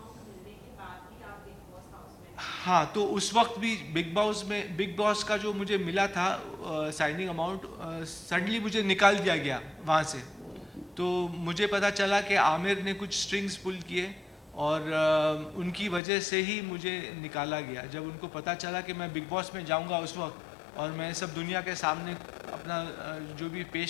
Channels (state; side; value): drops out; right; at 16.0 s